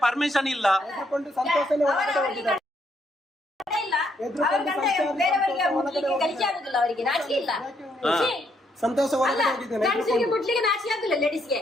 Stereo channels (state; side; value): normal; both; correlation 0.74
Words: ಪರ್ಮಿಷನ್ ಇಲ್ಲ. ಸಂತೋಷ